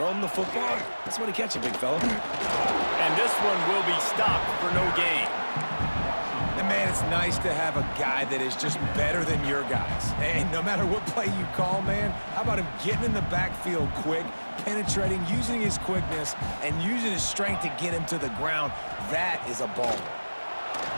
the football. That's what he catch it, big fella. And this one will be stopped for no gain. And man, it's nice to have a guy that is just better than your guys. And no matter what play you call, man, how about him getting in the backfield quick, penetrating, using his quickness, and using his strength to get him to the ground. That is a baller.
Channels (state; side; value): inverted; both; correlation -1.00